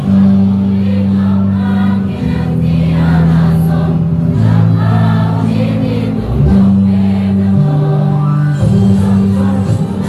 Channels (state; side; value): identical; both; correlation 1.00